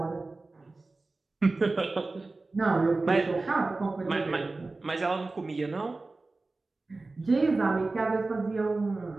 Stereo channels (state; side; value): quieter; left; 3.4 dB